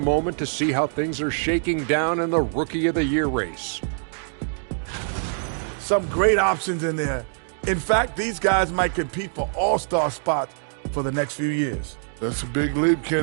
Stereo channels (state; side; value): silent; left; digital silence